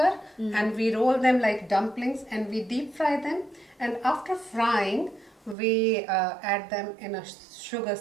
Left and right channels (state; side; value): drops out; left; at 5.6 s